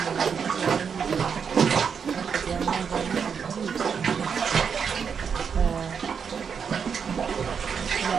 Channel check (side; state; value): left; quieter; 6.6 dB